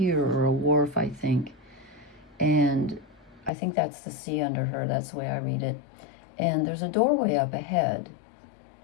or a wharf, I think. And I think that's the sea under her. That's the way I read it. And there's a doorway up ahead.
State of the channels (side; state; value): right; drops out; at 3.5 s